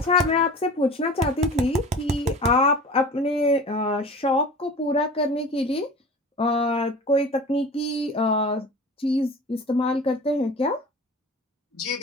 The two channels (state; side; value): normal; both; correlation 0.38